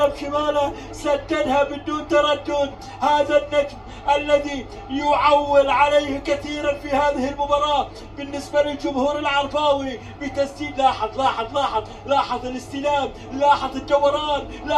سددها بدون تردد هذا النجم الذي يعول عليه كثيرا في هذه المباراة بالنسبة للجمهور العرباوي بتسديد. لاحظ الاستلام، لاحظ الدوران،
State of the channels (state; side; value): identical; both; correlation 1.00